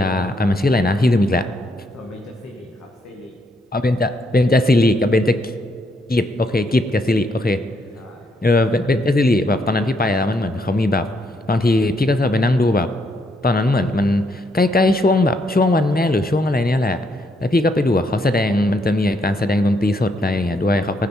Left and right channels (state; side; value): normal; both; correlation 0.74